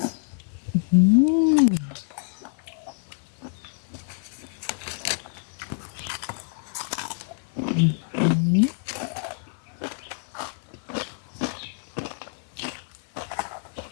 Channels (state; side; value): silent; right; 56 dB below the other